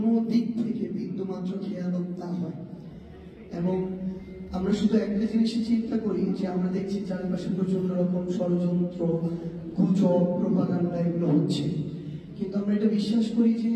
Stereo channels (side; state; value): both; identical; correlation 1.00